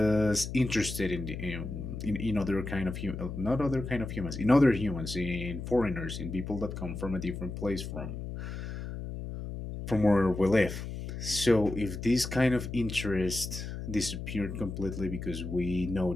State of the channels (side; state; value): left; noise; hum, 7 dB below the sound